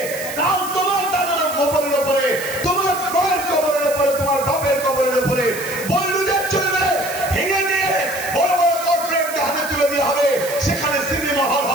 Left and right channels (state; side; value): noise; right; hiss, 11 dB below the sound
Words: কাল তোমার দাদার কবরের উপরে, তোমার মায়ের কবরের উপরে